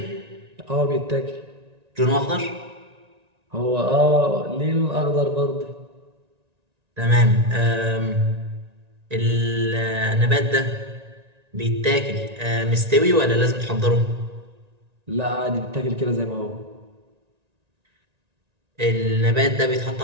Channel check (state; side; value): late; left; 1.9 ms